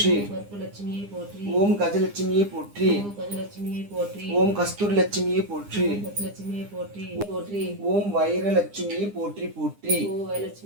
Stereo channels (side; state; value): left; late; 9.8 ms